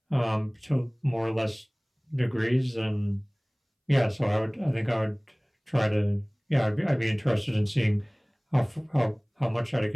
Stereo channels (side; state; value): both; identical; correlation 1.00